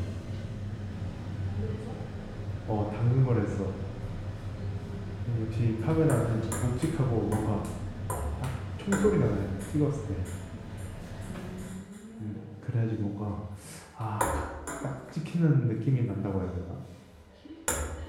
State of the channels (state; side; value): identical; both; correlation 1.00